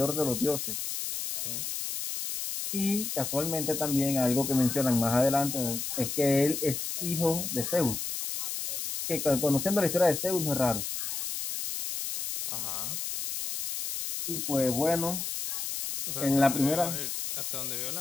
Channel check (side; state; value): left; noise; hiss, 4 dB below the sound